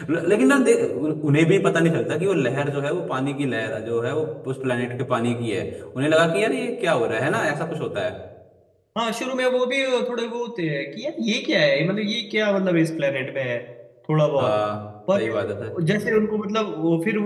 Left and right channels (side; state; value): both; identical; correlation 1.00